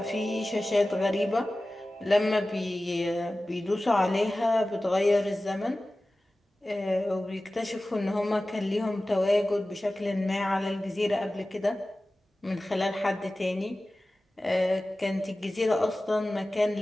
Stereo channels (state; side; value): normal; both; correlation 0.96